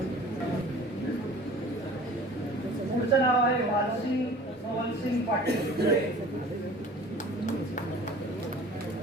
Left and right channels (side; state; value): both; normal; correlation 0.45